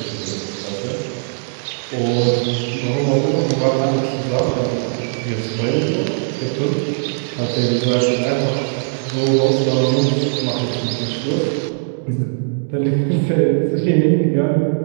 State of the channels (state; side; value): silent; left; digital silence